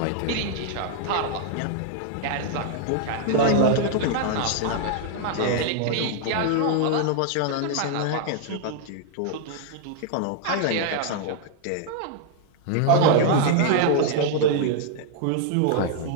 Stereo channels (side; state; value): both; different; correlation 0.00